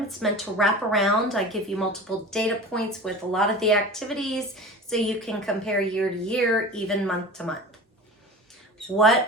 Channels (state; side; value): normal; both; correlation 0.36